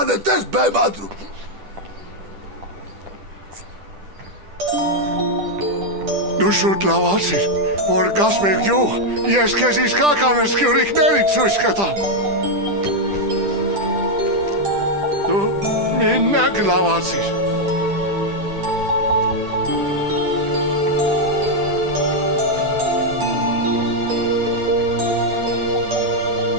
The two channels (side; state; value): left; late; 10 ms